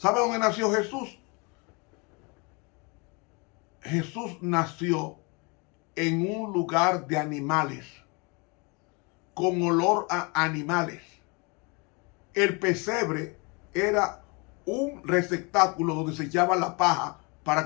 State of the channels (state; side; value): quieter; right; 30.3 dB